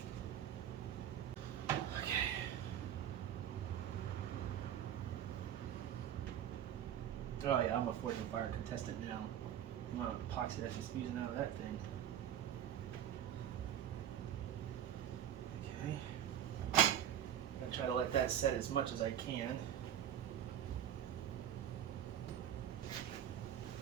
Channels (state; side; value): quieter; left; 10.2 dB